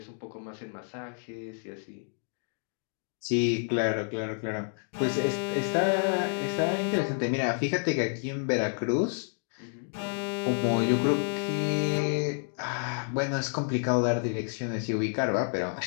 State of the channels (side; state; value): right; silent; 58 dB below the other